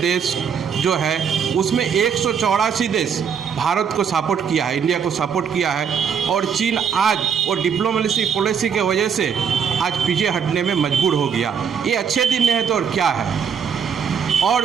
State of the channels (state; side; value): quieter; left; 7.1 dB